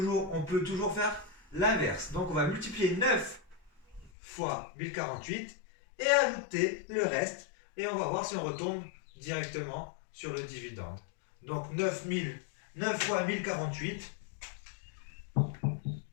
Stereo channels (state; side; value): drops out; right; at 4.1 s